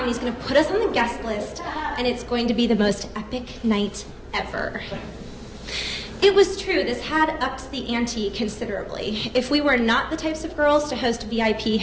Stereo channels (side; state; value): both; identical; correlation 1.00